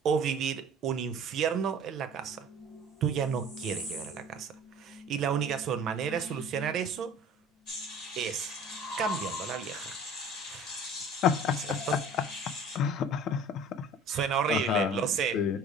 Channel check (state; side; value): normal; both; correlation 0.45